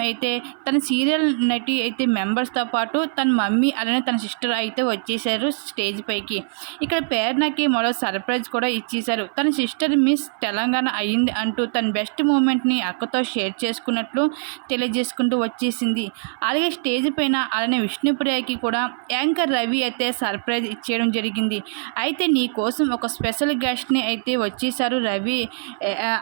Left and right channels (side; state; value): left; silent; 58 dB below the other